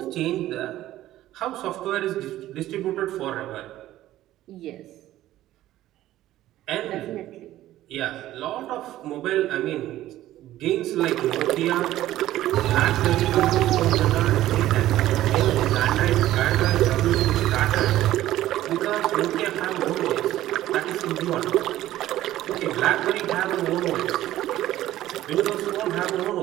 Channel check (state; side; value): quieter; left; 14.3 dB